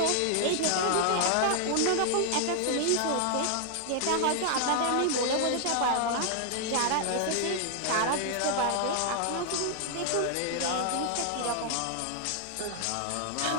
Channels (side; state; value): both; different; correlation 0.00